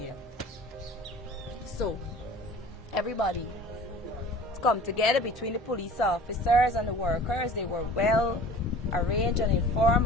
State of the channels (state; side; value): normal; both; correlation 0.43